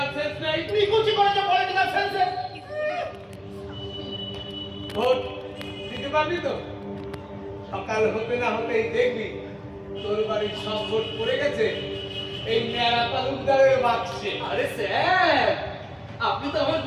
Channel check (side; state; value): both; identical; correlation 1.00